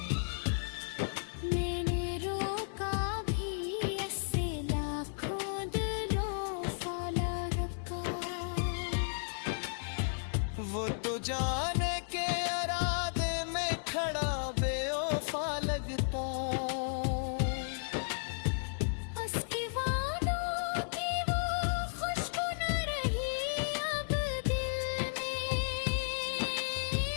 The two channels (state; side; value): silent; right; digital silence